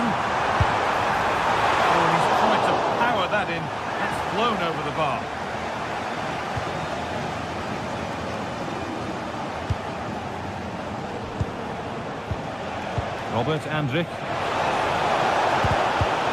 Oh, he's tried to power that in. It's flown over the bar. Robert Andrich.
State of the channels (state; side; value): identical; both; correlation 1.00